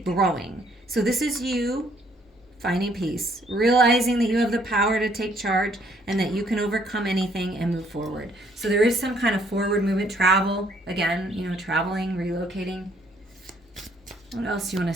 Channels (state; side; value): normal; both; correlation 0.65